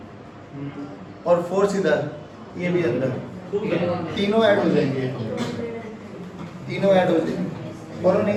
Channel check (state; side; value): identical; both; correlation 1.00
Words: और फोर्स इधर, ये भी अंदर, तीनों ऐड हो जाएंगे, तीनों ऐड हो जाएंगे। बोलो नहीं